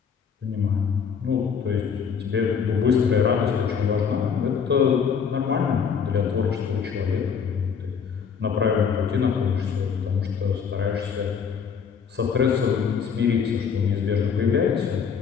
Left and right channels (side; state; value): right; quieter; 6.7 dB